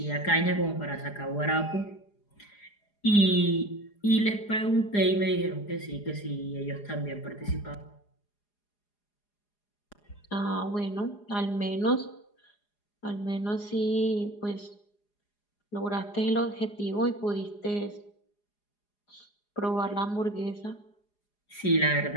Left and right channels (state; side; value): late; right; 4.9 ms